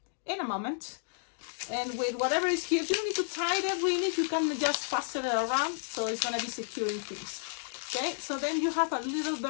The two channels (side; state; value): right; silent; digital silence